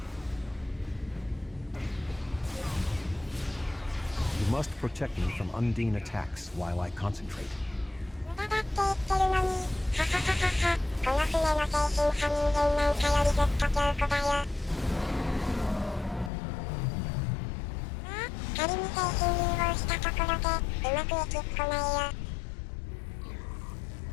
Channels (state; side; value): drops out; right; at 16.3 s